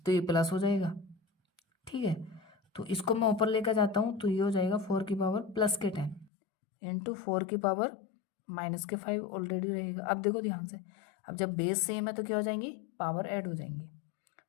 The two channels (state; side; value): drops out; right; at 6.3 s